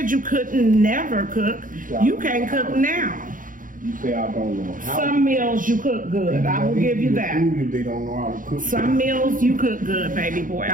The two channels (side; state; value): left; late; 0.39 ms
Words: you couldn't never cook. You can't cook now. You say I don't know how. Some meals you cook good. I will give you that. They don't know how to cook. Some meals you cook good, baby boy.